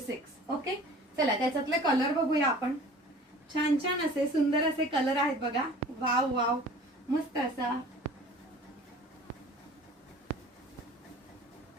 ओके, चला त्याच्यातले कलर बघूया आपण। छान छान असे सुंदर असे कलर आहेत बघा। वाव वाव, मस्त असा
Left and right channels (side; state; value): both; normal; correlation 0.45